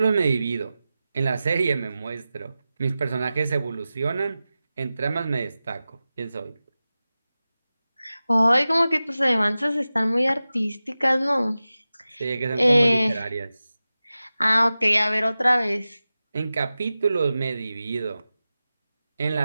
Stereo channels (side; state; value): both; inverted; correlation -0.95